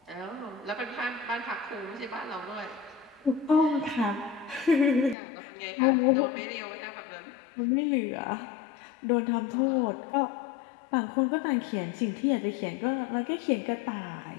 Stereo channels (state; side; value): drops out; right; at 5.2 s